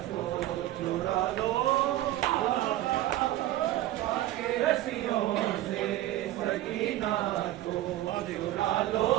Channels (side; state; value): left; quieter; 14.8 dB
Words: को छुड़ा लो के रस्सियों से सकीना को छुड़ा लो